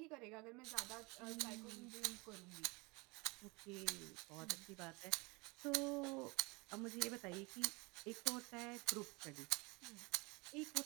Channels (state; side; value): quieter; left; 26.9 dB